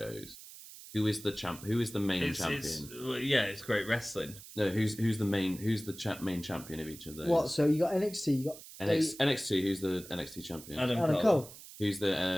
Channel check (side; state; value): right; noise; hiss, 16 dB below the sound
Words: Who is the champ? Who is the main champion? It's great wrestling. No, who's the main main champion of each of those? What? So you got NXT, you got NXT. Who's the NXT champion? Adam Cole. Who's